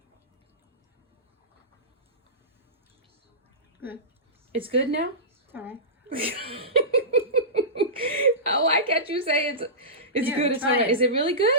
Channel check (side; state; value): both; normal; correlation -0.20